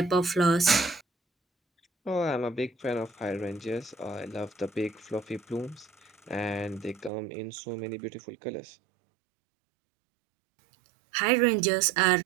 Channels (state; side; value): drops out; left; at 7.1 s